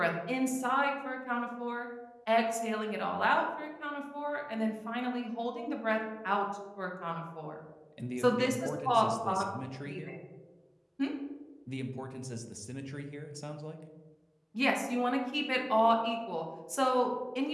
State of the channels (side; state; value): both; identical; correlation 1.00